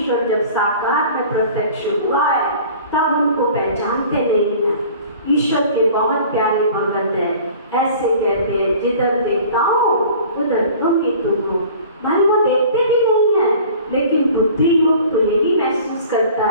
जब साकार में प्रत्यक्ष हुआ है, तब उनको पहचानते नहीं है। ईश्वर के बहुत प्यारे भगत हैं, ऐसे कहते हैं, जिधर देखता हूँ उधर तुम ही तुम हो। भाई वो देखते भी नहीं है, लेकिन बुद्धि योग तो यही महसूस करता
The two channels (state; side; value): inverted; both; correlation -0.45